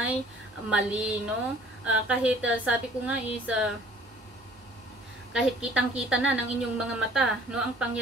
mali, no? Kahit sabi ko nga is kahit kitang-kita na ng inyong mga mata, no, ang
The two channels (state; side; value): normal; both; correlation 0.54